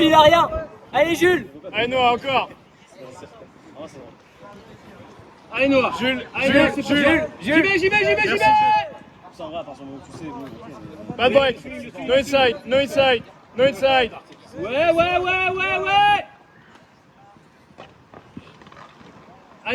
il a rien. Allez Jules. Allez Noah, encore. Allez Noah. Jules, Allez Noah, c'est Jules, Jules. J'y vais. Ça va, à partir du moment où tu sais, bon, Pas de break. No inside, no inside, no inside. Ouais.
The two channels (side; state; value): both; identical; correlation 1.00